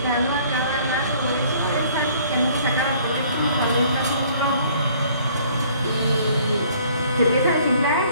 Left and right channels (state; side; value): inverted; both; correlation -0.57